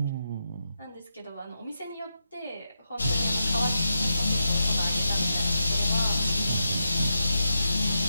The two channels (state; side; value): inverted; both; correlation -0.86